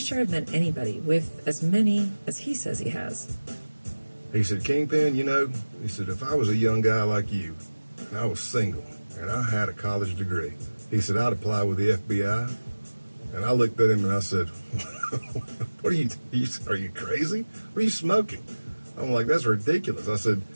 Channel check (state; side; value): inverted; both; correlation -1.00